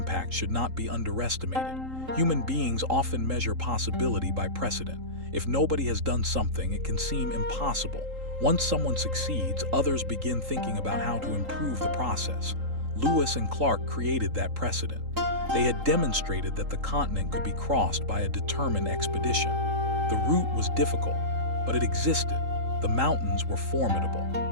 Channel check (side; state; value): left; late; 3.8 ms